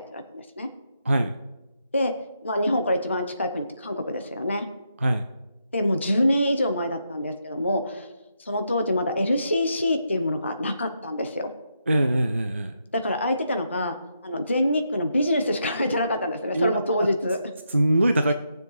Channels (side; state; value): both; inverted; correlation -0.80